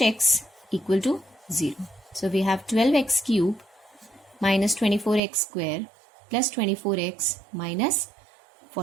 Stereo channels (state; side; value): drops out; left; at 5.2 s